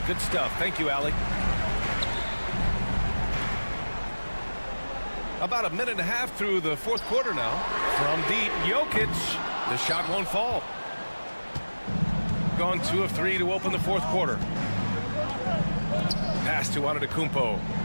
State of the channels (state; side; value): inverted; both; correlation -1.00